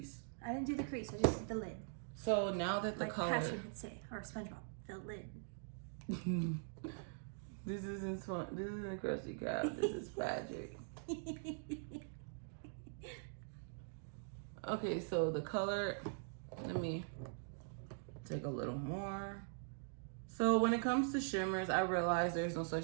I didn't do the crease, I just did the lid. So now that the like color... Patrick would say, or SpongeBob, the lid. This isn't Krusty Krab, this is Patrick. Okay, so the color, let me take a little more. So when it comes to shimmers, I realize there's no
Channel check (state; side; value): silent; left; digital silence